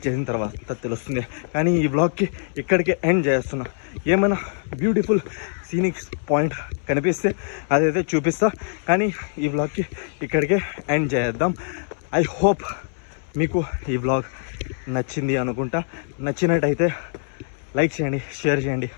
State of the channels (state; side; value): silent; right; 63 dB below the other